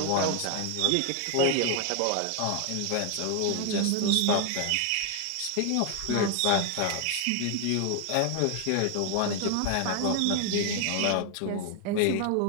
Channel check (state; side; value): different; both; correlation 0.00